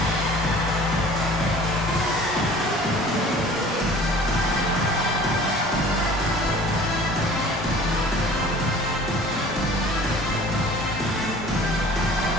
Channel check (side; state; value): both; normal; correlation 0.46